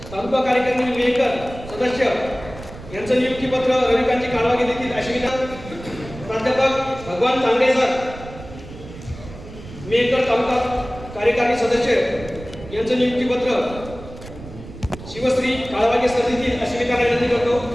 तालुका कार्यकारिणी मेहकर सदस्य यांचं नियुक्तीपत्र रविकांतजी काळवागे देतील अशी विनंती. प्राध्यापक भगवान तांगडे सर मेहकर तालुका कार्यकारिणी सदस्य यांचं नियुक्तीपत्र शिवश्री काळवागे सर देतील अशी विनंती करतो.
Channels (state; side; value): noise; right; rumble, 15 dB below the sound